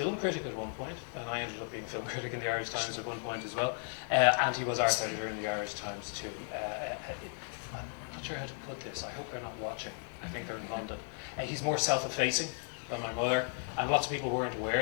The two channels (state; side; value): silent; right; 54 dB below the other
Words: critic at one point, and I ended up being film critic in the Irish Times at one point as well. And he was arts editor in the Irish Times too. I'm not sure how to put this. I hope they're not watching. I think they're in London. He's more self-effacing than my mother, and lots of people weren't